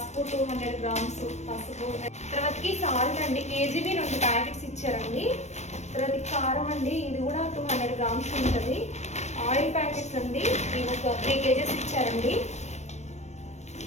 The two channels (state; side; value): late; right; 0.33 ms